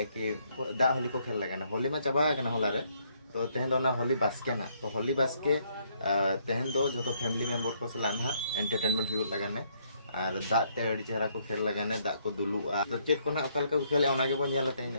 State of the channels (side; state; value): both; inverted; correlation -0.70